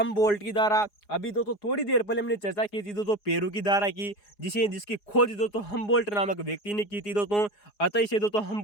की धारा। अभी दोस्तों थोड़ी देर पहले हमने चर्चा की थी दोस्तों पेरू की धारा की, जिसकी खोज दोस्तों हमबोल्ट नामक व्यक्ति ने की थी दोस्तों। अतः इसे दोस्तों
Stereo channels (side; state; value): right; late; 4.8 ms